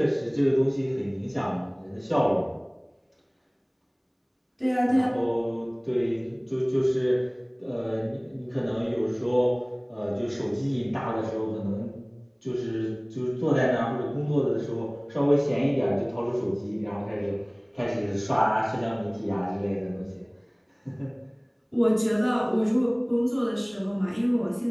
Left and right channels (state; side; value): identical; both; correlation 1.00